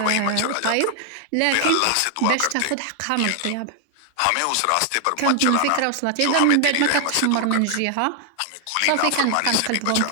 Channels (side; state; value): both; different; correlation 0.00